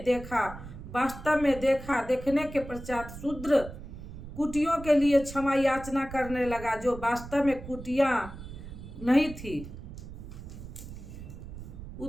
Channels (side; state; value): right; noise; rumble, 12 dB below the sound